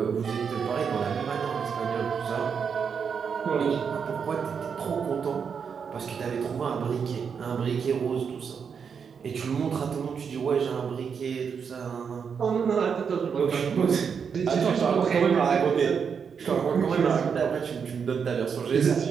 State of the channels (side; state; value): left; quieter; 6.5 dB